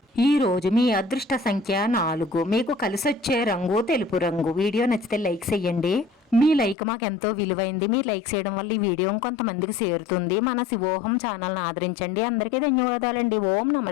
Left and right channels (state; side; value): drops out; right; at 6.8 s